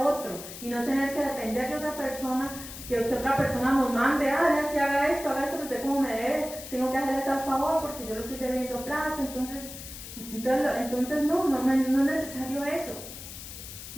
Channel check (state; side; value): noise; left; hiss, 12 dB below the sound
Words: otro y no tener que depender de otra persona, que otra persona nos mande, ya si haga esto, pero usted como me debe, tengo que hacerle tal favor porque yo lo estoy debiendo plata, entonces no es necesario eso.